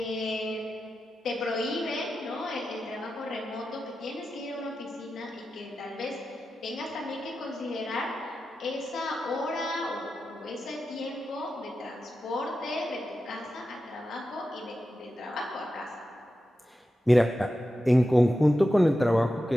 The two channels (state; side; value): normal; both; correlation 0.91